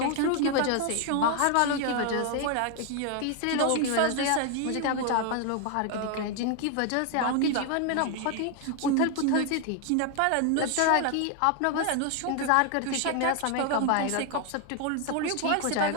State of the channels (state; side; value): different; both; correlation 0.01